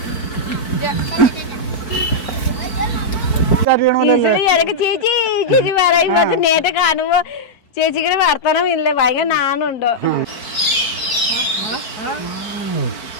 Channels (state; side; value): late; right; 4.5 ms